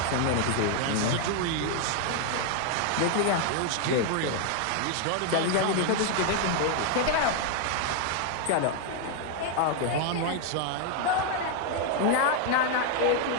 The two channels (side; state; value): both; different; correlation 0.00